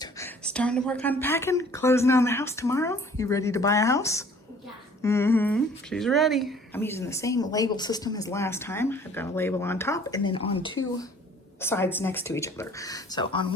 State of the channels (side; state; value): both; normal; correlation 0.53